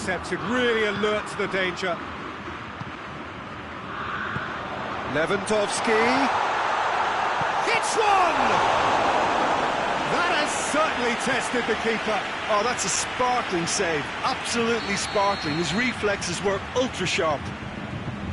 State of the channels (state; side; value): identical; both; correlation 1.00